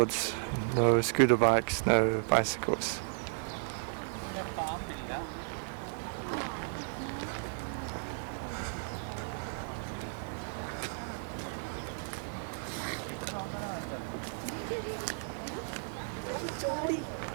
no scooter bikes, no bicycles.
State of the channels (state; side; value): silent; left; 55 dB below the other